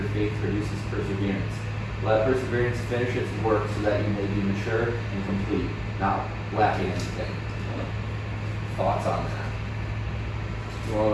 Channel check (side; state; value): both; identical; correlation 1.00